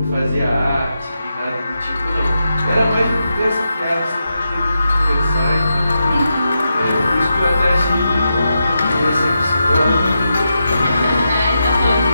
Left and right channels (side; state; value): both; inverted; correlation -0.87